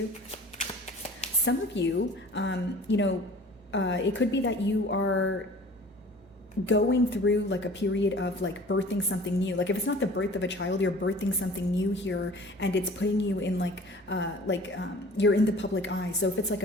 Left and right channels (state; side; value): normal; both; correlation 0.46